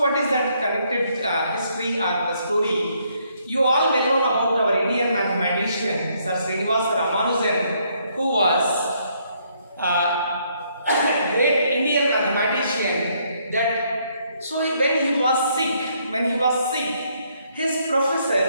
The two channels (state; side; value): inverted; both; correlation -0.70